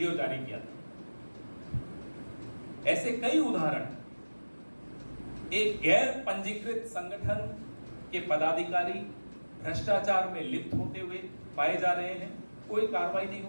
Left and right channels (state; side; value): inverted; both; correlation -1.00